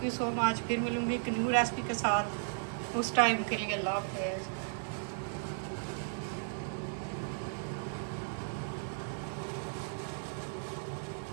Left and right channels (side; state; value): left; silent; digital silence